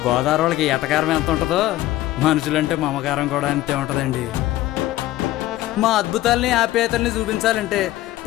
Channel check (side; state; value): right; quieter; 15.6 dB